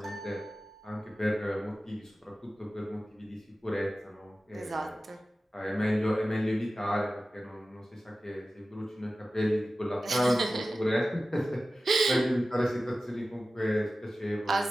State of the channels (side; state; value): both; normal; correlation 0.95